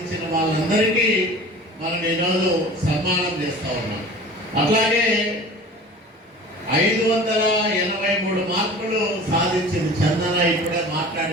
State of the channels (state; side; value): normal; both; correlation 0.40